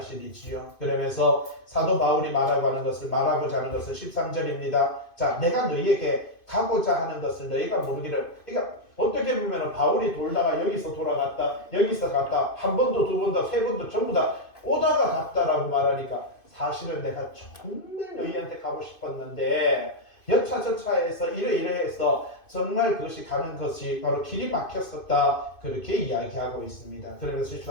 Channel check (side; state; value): right; late; 2.5 ms